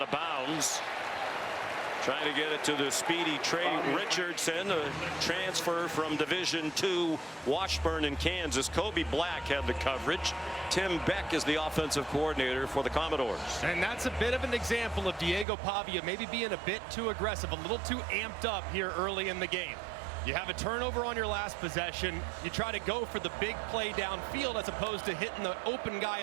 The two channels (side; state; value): left; drops out; at 15.5 s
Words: of bounds. Trying to get it to the speedy Trey Richardson, a transfer from Division II Washburn in Kansas. Kobe Black had the coverage. Tim Beck is the offensive coordinator for the Commodores. And that's a bit of an example of Diego Pavia maybe being a bit too aggressive, a little too amped up here early in the game. You have a turnover on your last possession. You try to go for the big play downfield as opposed to hitting the open guy